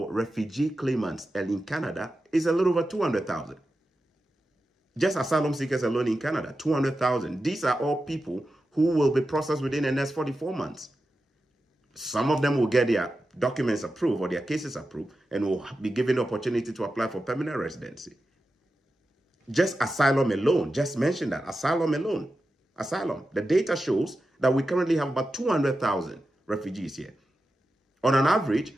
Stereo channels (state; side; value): normal; both; correlation 0.91